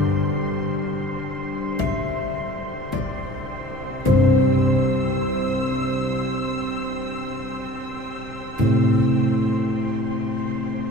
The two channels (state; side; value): normal; both; correlation 0.45